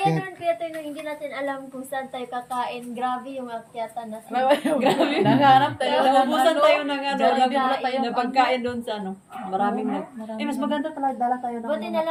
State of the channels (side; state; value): both; identical; correlation 1.00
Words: naman kaya tayo nung hindi natin alam kung saan tayo kakain. Grabe yung akyatan na Grabe. Naghanap tayo. Naubusan tayo ng Jollibee. na pagkain doon sa Maraming mas maganda talaga dala tayo ng Buti na